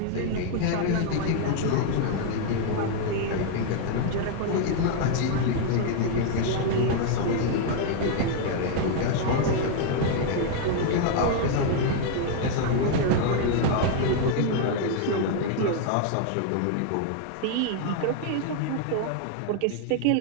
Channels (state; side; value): different; both; correlation 0.00